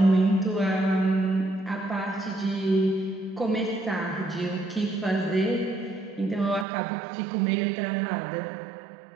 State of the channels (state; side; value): drops out; left; at 6.7 s